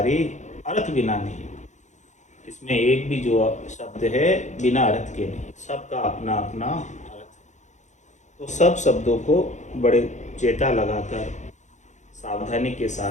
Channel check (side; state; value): right; late; 0.35 ms